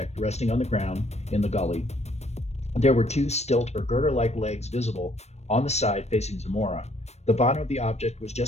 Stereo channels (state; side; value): late; right; 0.31 ms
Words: resting on the ground in the gully. There were two stilt or girder-like legs visible on the side facing Zamora. The bottom of the object was